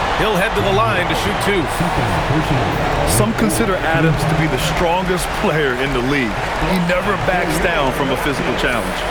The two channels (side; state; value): both; identical; correlation 1.00